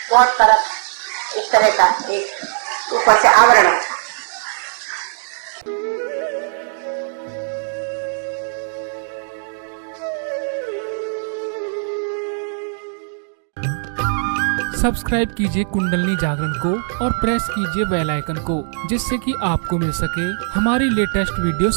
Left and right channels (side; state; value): left; silent; digital silence